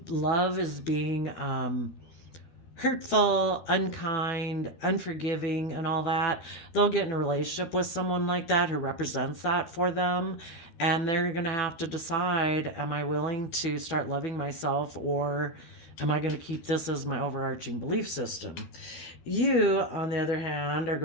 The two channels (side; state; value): right; late; 12 ms